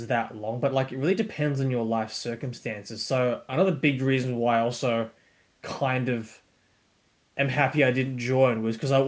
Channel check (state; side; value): identical; both; correlation 1.00